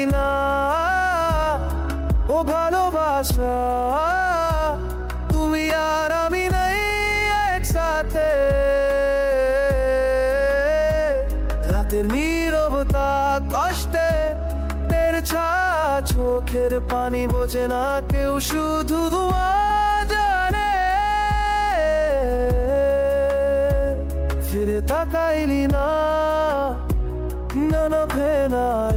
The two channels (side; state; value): both; identical; correlation 1.00